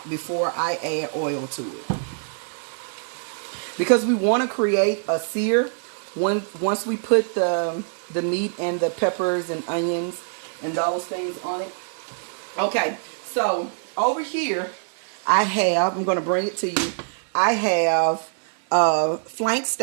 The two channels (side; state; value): left; silent; digital silence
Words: before I add oil to it. Because we want to create a sear once we put the meat and the peppers and onions and those things on it. Okay, so over here I'm going to bring it to you. I have flank